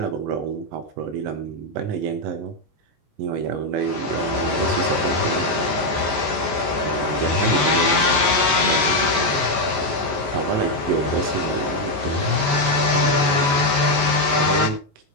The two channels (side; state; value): left; late; 19 ms